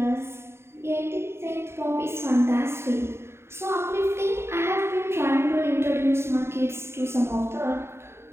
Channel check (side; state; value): left; late; 0.12 ms